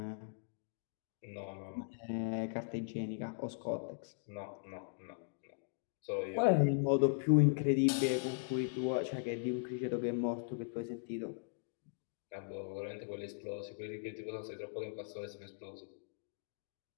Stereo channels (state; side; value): silent; right; digital silence